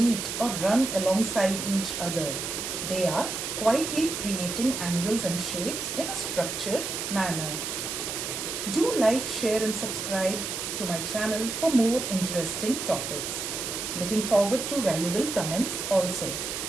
or run alongside each other, they are quietly creating angles and shapes in a structured manner. Do like, share and subscribe to my channel for more interesting topics. Looking forward to valuable comments also.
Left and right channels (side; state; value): right; noise; hiss, 4 dB below the sound